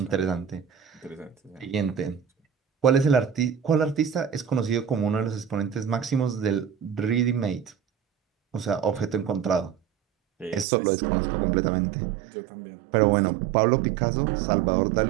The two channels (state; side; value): drops out; left; at 10.7 s